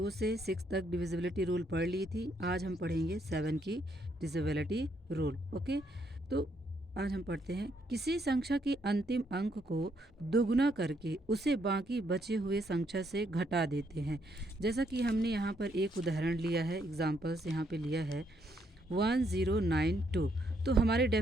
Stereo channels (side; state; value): both; normal; correlation 0.73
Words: से 6 तक डिविजिबिलिटी रूल पढ़ ली थी। आज हम पढ़ेंगे 7 की डिविजिबिलिटी रूल। ओके, तो आज हम पढ़ते हैं, किसी संख्या के अंतिम अंक को दुगुना करके उसे बाकी बचे हुए संख्या से घटा देते हैं। जैसा कि हमने यहाँ पर एक उदाहरण लिया है, एग्जाम्पल्स यहाँ पे लिया है 1092। तो हमारे